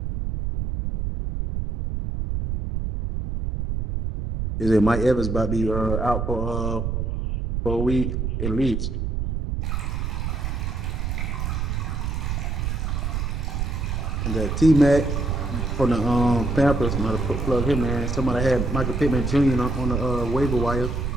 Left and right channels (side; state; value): right; noise; rumble, 1 dB below the sound